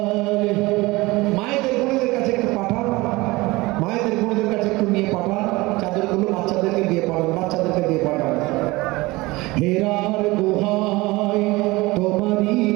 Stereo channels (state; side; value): quieter; left; 21.5 dB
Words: আলিহি মায়েদের বোনদের কাছে একটু পাঠান মায়েদের বোনদের কাছে একটু নিয়ে পাঠান চাদরগুলো বাচ্চাদেরকে দিয়ে পাঠান হেরার গুহায় তোমারই